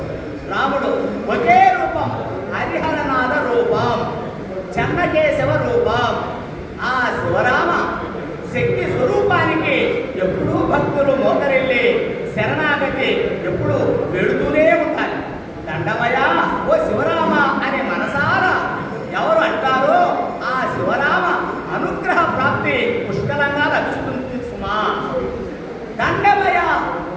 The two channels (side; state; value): both; identical; correlation 1.00